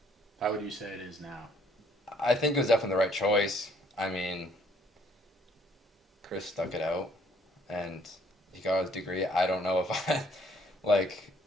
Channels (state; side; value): normal; both; correlation 0.64